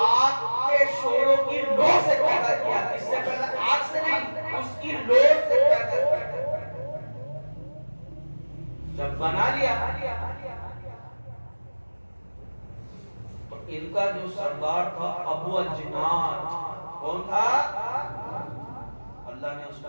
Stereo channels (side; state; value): both; inverted; correlation -1.00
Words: کے شعلوں کی لو سے پیدا کیا اس سے پہلے آگ سے نہیں اس کی لو سے پیدا کیا جب بنا لیا تو ان کا جو سردار تھا ابو الجنان کون تھا اللہ نے اس